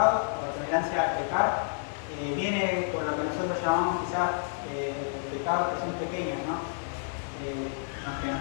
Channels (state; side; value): silent; right; 58 dB below the other